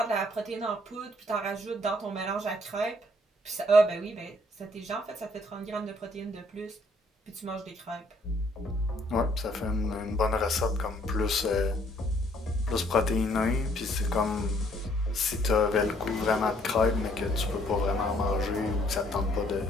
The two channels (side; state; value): both; normal; correlation 0.64